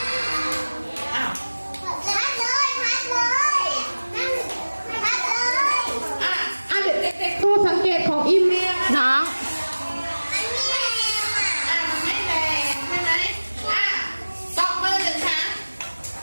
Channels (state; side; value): inverted; both; correlation -1.00